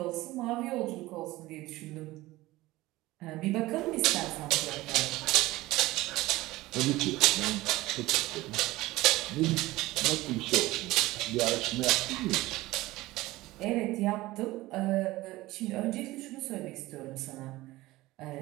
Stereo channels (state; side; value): quieter; left; 18.4 dB